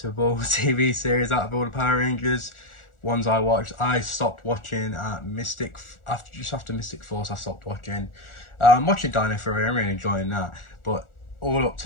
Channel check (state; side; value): late; right; 1.4 ms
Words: TV series out of all the Power Rangers ones I watched. I stopped watching at just after Mystic Force. I stopped watching. I'm watching Dino Fury. I'm really enjoying that. But all up